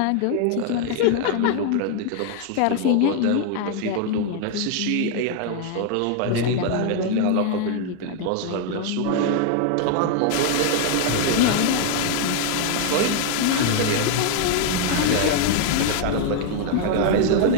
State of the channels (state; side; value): different; both; correlation 0.00